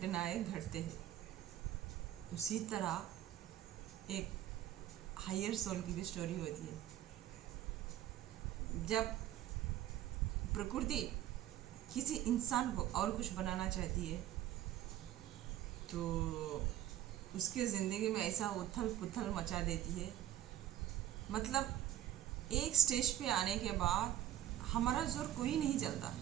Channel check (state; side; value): quieter; left; 12.5 dB